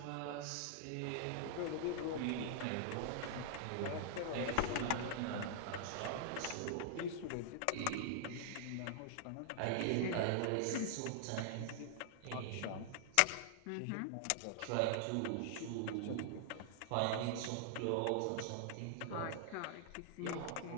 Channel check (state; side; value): different; both; correlation -0.01